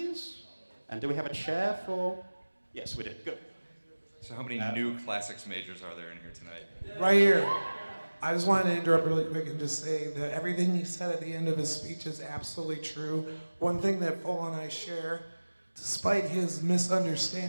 And do we have a chair for... Yes, we do. Good. So how many new classics majors are there in here tonight? Right here. I just wanted to interrupt really quick and just say that everything he said at the end of his speech is absolutely true. One thing that Full and I share, despite his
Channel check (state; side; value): inverted; both; correlation -1.00